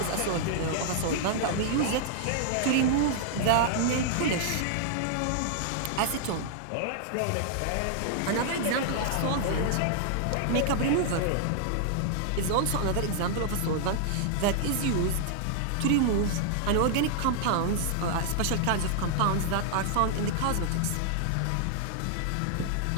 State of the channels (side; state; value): both; different; correlation -0.01